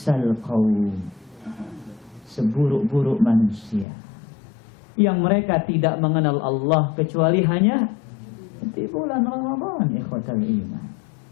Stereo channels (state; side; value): drops out; right; at 3.9 s